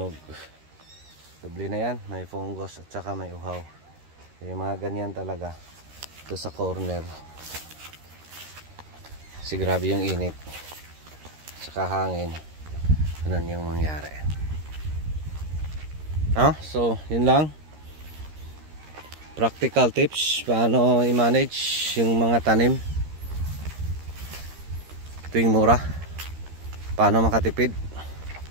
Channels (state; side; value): late; left; 13 ms